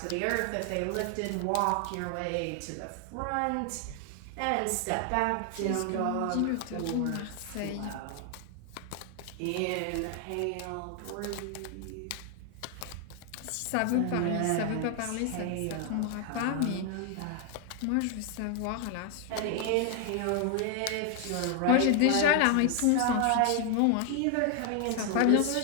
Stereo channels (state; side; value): different; both; correlation 0.00